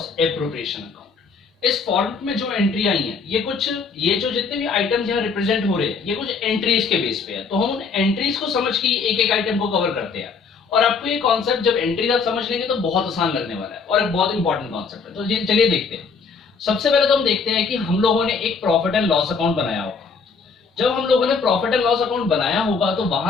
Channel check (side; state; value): right; quieter; 5.0 dB